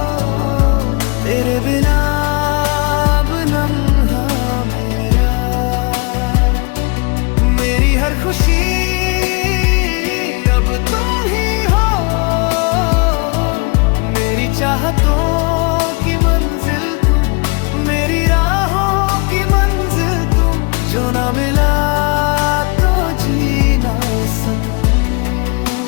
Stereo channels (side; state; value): right; quieter; 31.2 dB